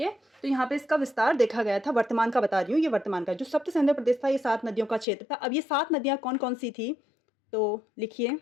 है, तो यहाँ पे इसका विस्तार देखा गया था। वर्तमान का बता रही हूँ, ये वर्तमान का जो सप्त सैंधव प्रदेश था ये 7 नदियों का क्षेत्र था। अब ये 7 नदियाँ कौन कौन सी थी तो लिखिए,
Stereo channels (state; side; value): drops out; right; at 5.1 s